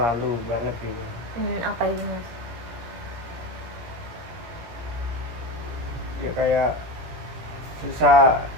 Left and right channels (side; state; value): left; late; 17 ms